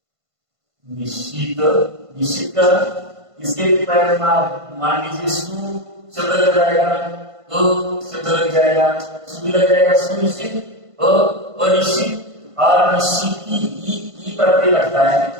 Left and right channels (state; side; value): late; left; 1.5 ms